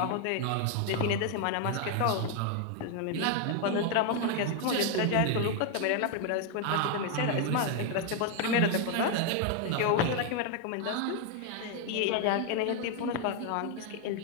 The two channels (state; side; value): different; both; correlation 0.01